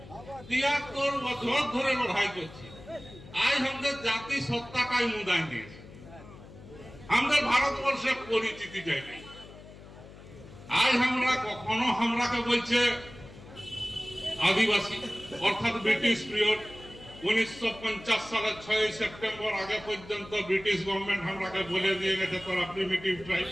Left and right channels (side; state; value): left; noise; hum, 18 dB below the sound